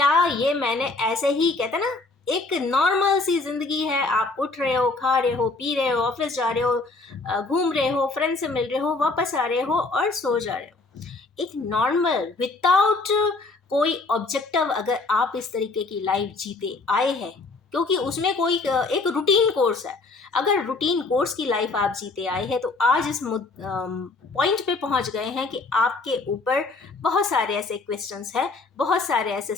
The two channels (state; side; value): quieter; right; 3.6 dB